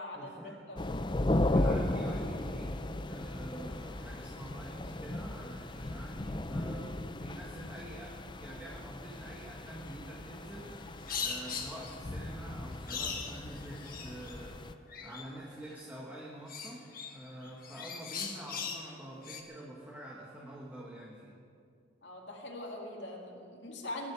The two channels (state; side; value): normal; both; correlation 0.65